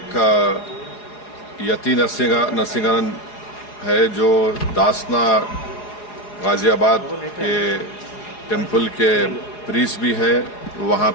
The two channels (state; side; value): late; right; 4.8 ms